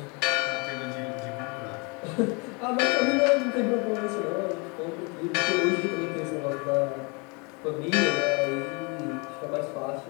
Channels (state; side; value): quieter; right; 31.2 dB